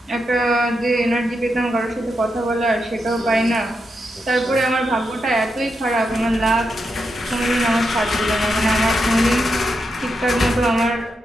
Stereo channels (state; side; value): normal; both; correlation 0.85